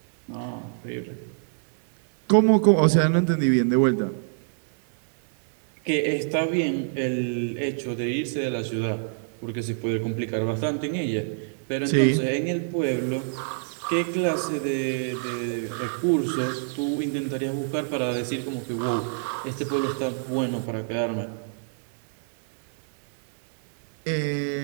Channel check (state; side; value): silent; left; 59 dB below the other